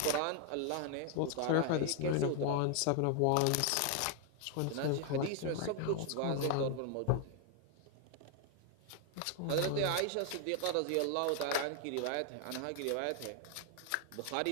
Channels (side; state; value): both; different; correlation 0.00